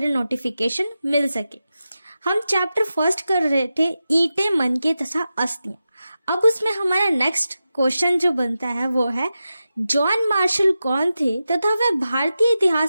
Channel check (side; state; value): both; inverted; correlation -0.92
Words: नोटिफिकेशन मिल सके। हम चैप्टर फर्स्ट कर रहे थे ईंटें, मनके तथा अस्थियां। अब उसमें हमारा नेक्स्ट क्वेश्चन जो बनता है वो है जॉन मार्शल कौन थे तथा वह भारतीय